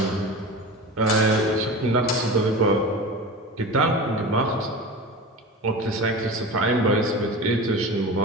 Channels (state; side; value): normal; both; correlation 0.31